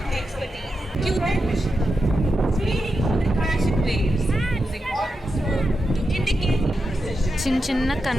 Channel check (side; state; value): both; normal; correlation 0.88